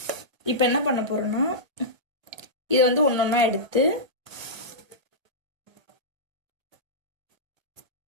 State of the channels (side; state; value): left; late; 1.1 ms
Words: இப்போ என்ன பண்ண போறோம்னா இதை வந்து ஒன்றொன்னா எடுத்து